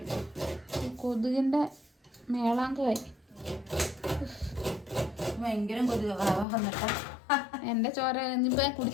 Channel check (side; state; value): right; drops out; at 6.5 s